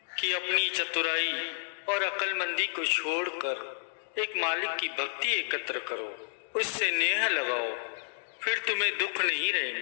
कि अपनी चतुराई और अक्लमंदी को छोड़कर एक मालिक की भक्ति एकत्र करो, उससे नेह लगाओ, फिर तुम्हें दुख नहीं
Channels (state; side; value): silent; right; digital silence